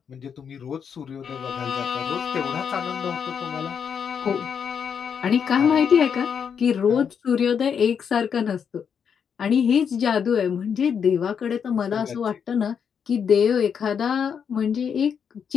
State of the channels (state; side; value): quieter; right; 7.2 dB